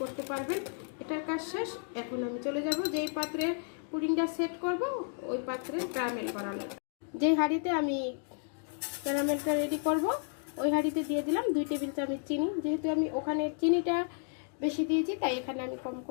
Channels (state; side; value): silent; right; 56 dB below the other